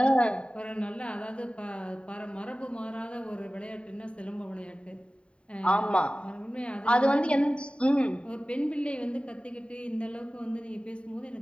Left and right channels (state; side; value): late; right; 0.057 ms